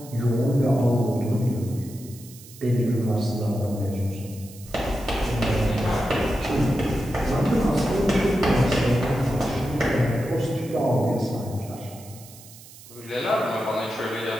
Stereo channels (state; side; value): noise; right; hiss, 19 dB below the sound